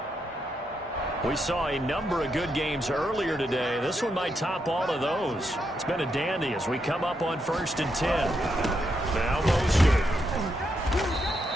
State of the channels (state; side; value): normal; both; correlation 0.81